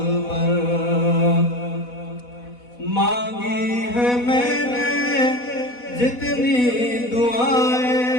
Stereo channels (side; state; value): right; late; 4.1 ms